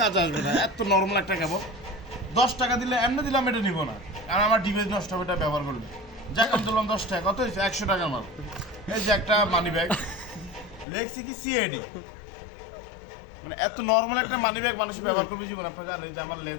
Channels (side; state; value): right; drops out; at 10.9 s